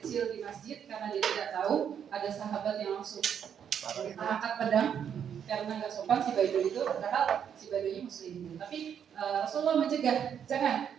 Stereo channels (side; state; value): left; quieter; 8.3 dB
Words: di masjid karena dia tidak tahu, ada sahabat yang langsung angkat pedang karena nggak sopan si Baduy itu, padahal si Baduynya muslim. Tapi Rasulullah mencegah, jangan,